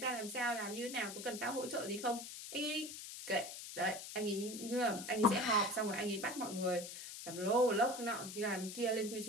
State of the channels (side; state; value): left; noise; hiss, 9 dB below the sound